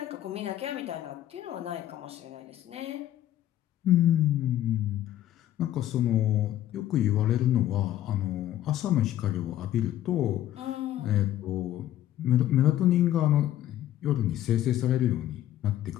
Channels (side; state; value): right; quieter; 12.7 dB